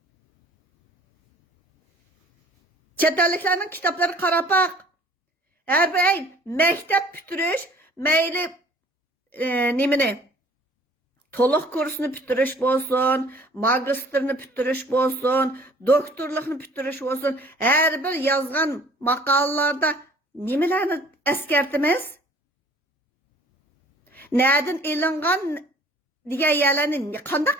Chet elliklarning kitoblari qarab baq. Har bir maktab bitirish, mayli nimani? To'liq kursni bitirish bo'lsin, magistrni bitirish bo'lsin, doktorlikni bitirish bo'lsin, har bir yozgan maqolalarda nimalarni eskartimiz? Nereden ilingan degan yerlarni qanday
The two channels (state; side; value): normal; both; correlation 0.52